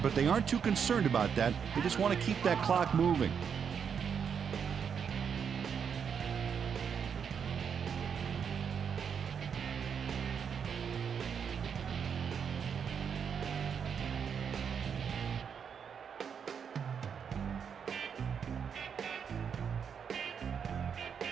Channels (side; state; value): left; quieter; 7.1 dB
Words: they aren't too concerned about that. They just want to keep that clock moving.